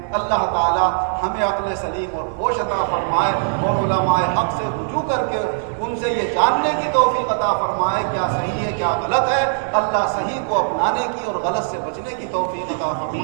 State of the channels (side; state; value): left; silent; 57 dB below the other